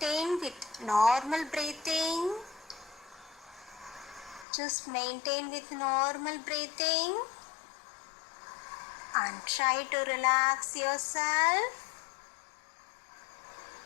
with normal breathing. Just maintain with normal breathing and try to relax yourself.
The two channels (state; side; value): drops out; right; at 4.5 s